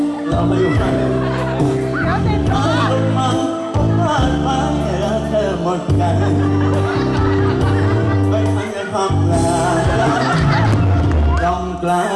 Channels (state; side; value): identical; both; correlation 1.00